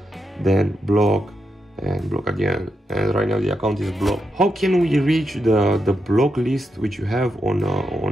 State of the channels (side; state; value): both; normal; correlation 0.85